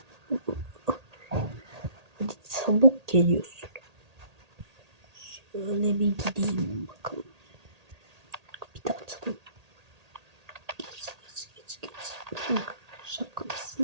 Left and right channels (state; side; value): late; left; 1.8 ms